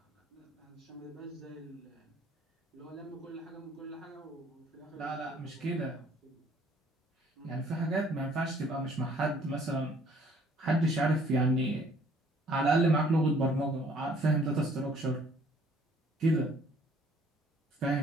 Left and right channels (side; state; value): both; normal; correlation 0.59